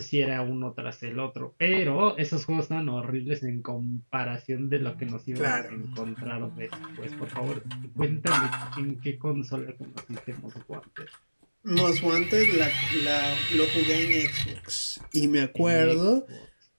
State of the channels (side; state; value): both; inverted; correlation -1.00